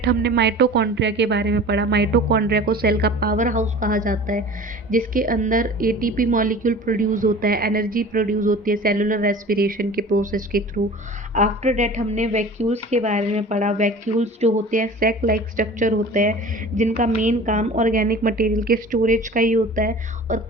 हमने माइटोकॉन्ड्रिया के बारे में पढ़ा। माइटोकॉन्ड्रिया को सेल का पावर हाउस कहा जाता है, जिसके अंदर एटीपी मॉलिक्यूल प्रोड्यूस होता है, एनर्जी प्रोड्यूस होती है सेलुलर रेस्पिरेशन के प्रोसेस के थ्रू। आफ्टर डेट हमने वैक्यूल्स के बारे में पढ़ा। वैक्यूल्स जो होते हैं सैक लाइक स्ट्रक्चर होते हैं, जिनका मेन काम ऑर्गेनिक मटेरियल के स्टोरेज का ही होता है, और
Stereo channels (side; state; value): both; normal; correlation 0.41